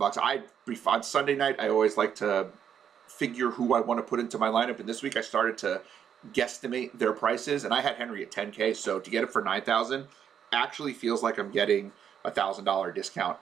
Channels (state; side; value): quieter; left; 8.4 dB